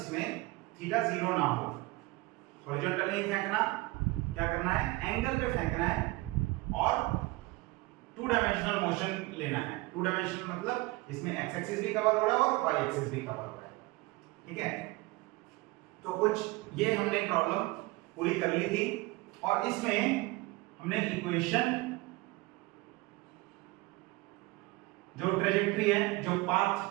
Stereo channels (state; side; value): quieter; left; 21.8 dB